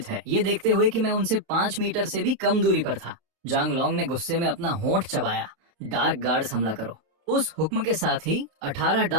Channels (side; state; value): left; late; 31 ms